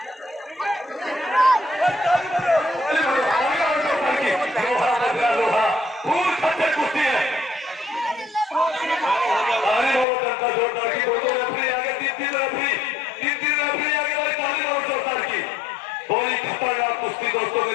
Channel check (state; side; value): drops out; right; at 10.1 s